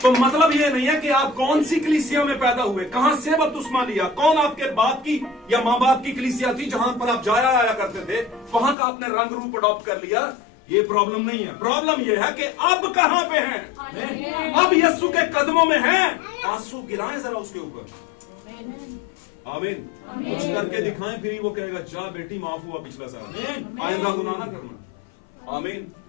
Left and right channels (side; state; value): right; drops out; at 8.8 s